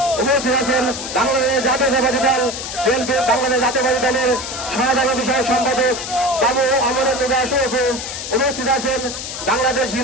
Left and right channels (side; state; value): left; noise; hiss, 7 dB below the sound